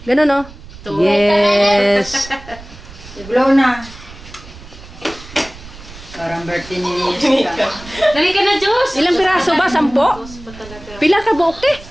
Ganun, no? Yes! I-blow na. Parang birthday ni Jessica. Dali ka na, Diyos! Ilang piraso ba? 10? Pila ka buok, te?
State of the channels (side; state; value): right; noise; rumble, 18 dB below the sound